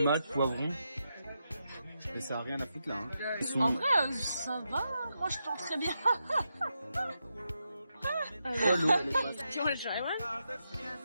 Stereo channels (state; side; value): inverted; both; correlation -0.85